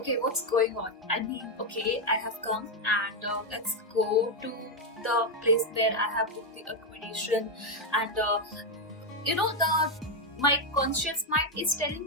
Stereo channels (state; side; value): normal; both; correlation 0.03